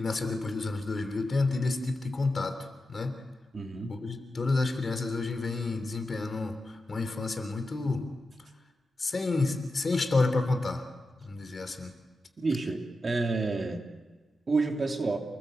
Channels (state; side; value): normal; both; correlation 0.90